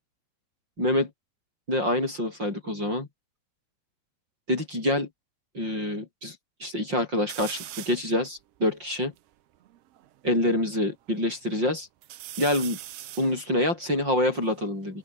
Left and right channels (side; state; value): left; late; 5.7 ms